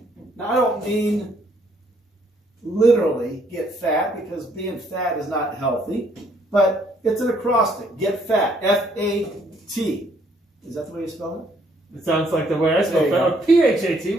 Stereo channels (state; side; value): normal; both; correlation 0.67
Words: Now, I don't mean literally get fat, because being fat is not healthy, but it's an acrostic. Get fat. F-A-T. Is that the way you spell it? It sounds like the way I spell There you fat. Or P-H-A-T.